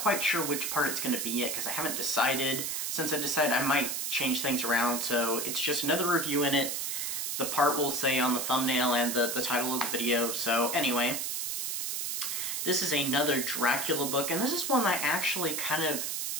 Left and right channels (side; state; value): right; noise; hiss, 2 dB below the sound